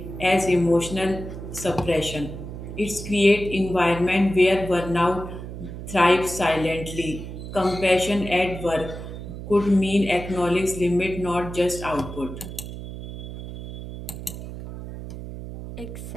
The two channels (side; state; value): right; noise; hum, 10 dB below the sound